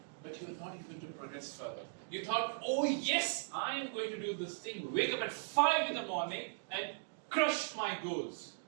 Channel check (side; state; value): left; silent; digital silence